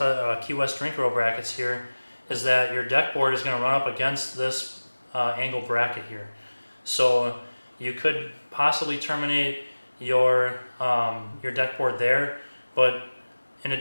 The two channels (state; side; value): inverted; both; correlation -1.00